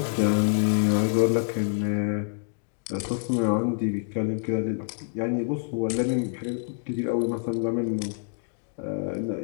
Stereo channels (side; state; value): right; silent; digital silence